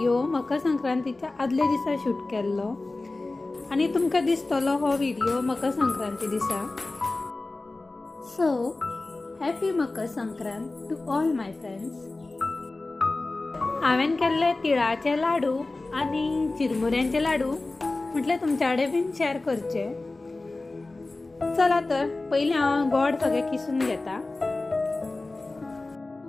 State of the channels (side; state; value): right; quieter; 3.2 dB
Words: मकर संक्रांतीच्या आदले दिसा शूट केल्लो आनी तुमकां दिसतलो हो व्हिडिओ मकर संक्रांती दिसा. So happy Makar Sankrant to all my friends. हांवें केल्ले तिळाचे लाडू आनी चिरमुऱ्यांचे लाडू म्हटल्यार तुमच्या कडेन बीन शेअर करचे. चला तर पहिले हांव गोड सगळें किसून घेता.